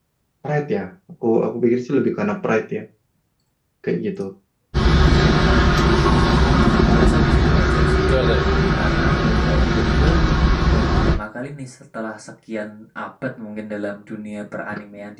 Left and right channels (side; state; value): both; identical; correlation 1.00